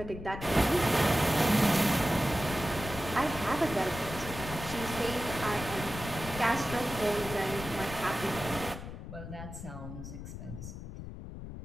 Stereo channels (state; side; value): noise; left; rumble, 10 dB below the sound